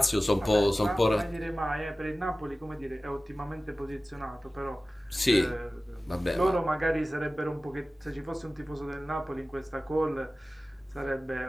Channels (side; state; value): both; normal; correlation 0.96